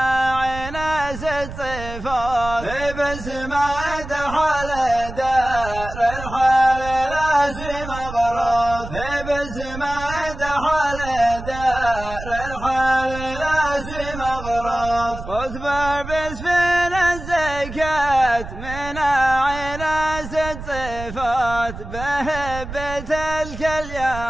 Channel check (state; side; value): noise; right; rumble, 11 dB below the sound